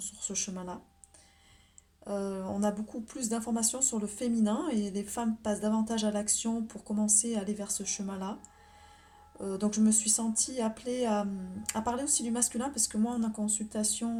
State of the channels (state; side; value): identical; both; correlation 1.00